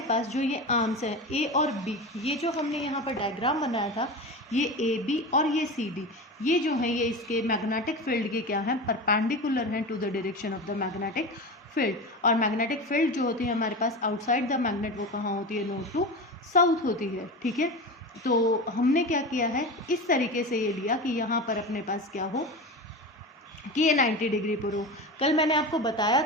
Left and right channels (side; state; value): both; normal; correlation 0.26